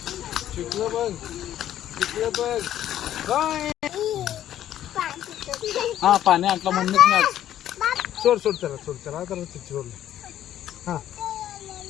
शिकलं बघ शिकलं बघ. बाय. हा पाणी आणलं म्हणूनच मी आज. सोड सोड चला सोड चला तर सोड. हा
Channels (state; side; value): quieter; right; 11.7 dB